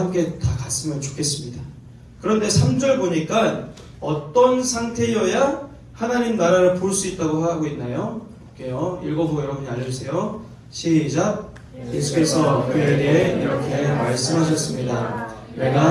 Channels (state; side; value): identical; both; correlation 1.00